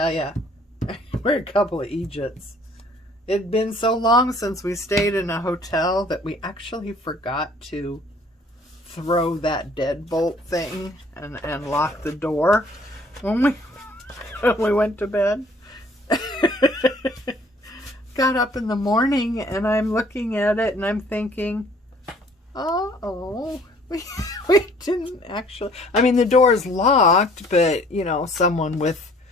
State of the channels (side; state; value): both; normal; correlation 0.57